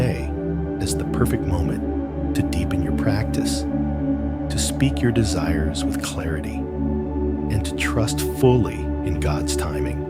as the perfect moment to deepen your practice, to speak your desires with clarity, and to trust fully in God's timing.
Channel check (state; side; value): identical; both; correlation 1.00